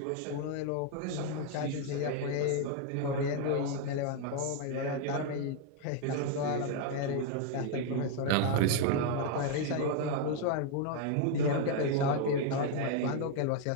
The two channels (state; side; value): different; both; correlation 0.00